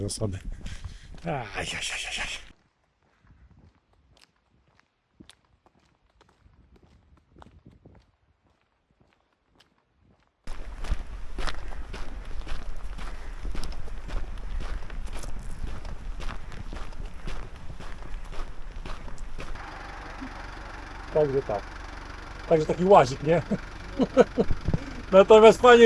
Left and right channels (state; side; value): identical; both; correlation 1.00